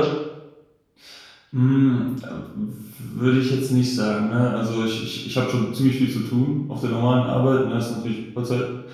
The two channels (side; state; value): both; identical; correlation 1.00